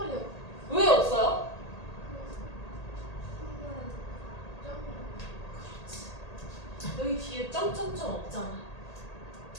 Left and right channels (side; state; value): right; late; 1.8 ms